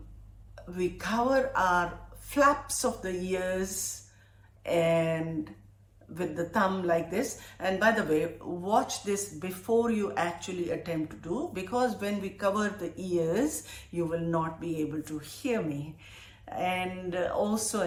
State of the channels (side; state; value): both; identical; correlation 1.00